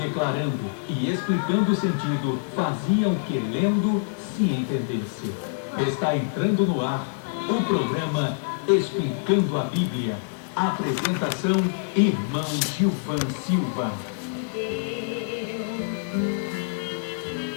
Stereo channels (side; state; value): right; silent; digital silence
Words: declarando e explicando o sentido, fazia o que lendo se entendesse. Está entrando no ar o programa Explicando a Bíblia. Apresentação, irmão Gilvan Silva.